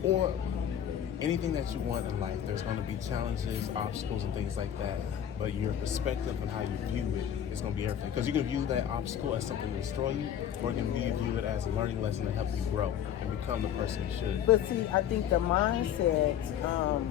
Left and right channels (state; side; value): quieter; right; 9.7 dB